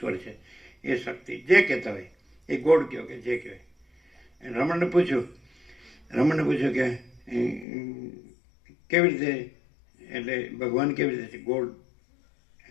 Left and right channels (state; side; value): drops out; right; at 7.7 s